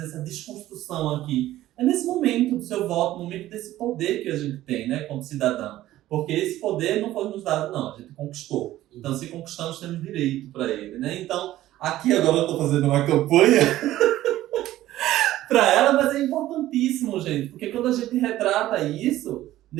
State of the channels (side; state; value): left; quieter; 14.7 dB